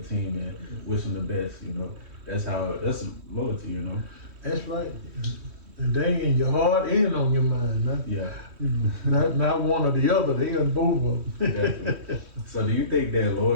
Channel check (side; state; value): left; late; 3.1 ms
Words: team and wish them the best. That's loyalty. That's right. And they in your heart and on your mind. Not one or the other. They in both of them. Definitely. So do you think that